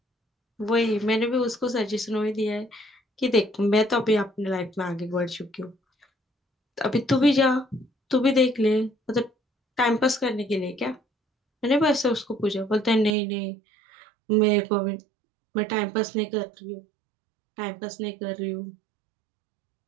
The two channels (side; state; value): left; drops out; at 13.2 s